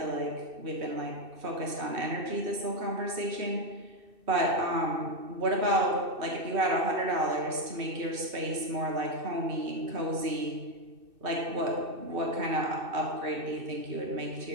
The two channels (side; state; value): left; late; 2.6 ms